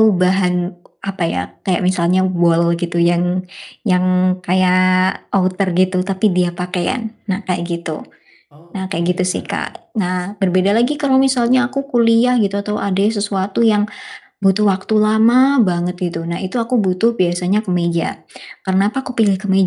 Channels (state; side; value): identical; both; correlation 1.00